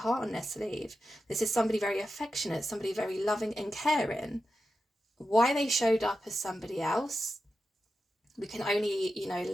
on their sleeve. This is somebody very affectionate, somebody very loving and caring. Why they showed up as somebody else, we can only, you know,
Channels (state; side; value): normal; both; correlation 0.90